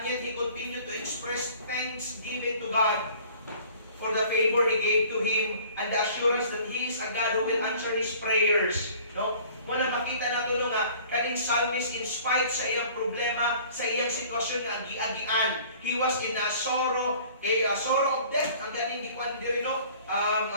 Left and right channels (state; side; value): inverted; both; correlation -0.50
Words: yet he continued to express thanksgiving to God for the favor He gave to him and the assurance that He is a God who will answer his prayers. No? Muna makita nato nga kaning psalmist in spite sa iyang problema, sa iyang sitwasyon nga agi-agian, he was in a sorrow, sorrow of death, ang ganing gikuan diri, no?